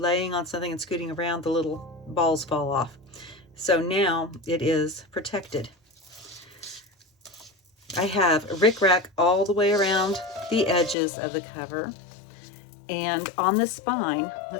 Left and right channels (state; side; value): drops out; right; at 11.0 s